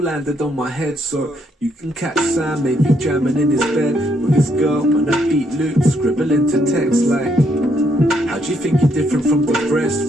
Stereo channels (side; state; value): both; normal; correlation 0.73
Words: landed on my head. So you can catch Sam, maybe jamming in his bed with his girl on a beat loop, scribbling to text like, how do you think you're different from the rest?